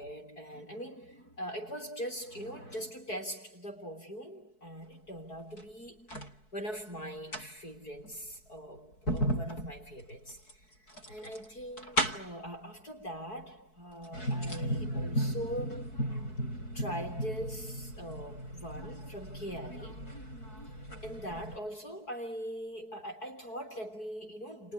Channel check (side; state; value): right; late; 4.6 ms